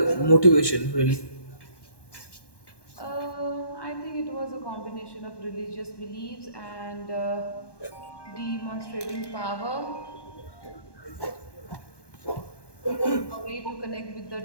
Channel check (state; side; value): late; right; 1.1 ms